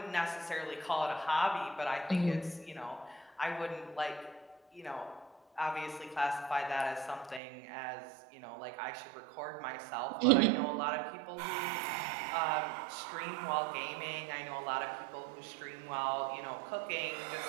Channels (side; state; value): left; drops out; at 7.4 s